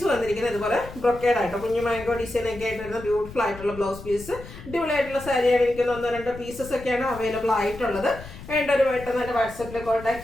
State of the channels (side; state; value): left; noise; rumble, 15 dB below the sound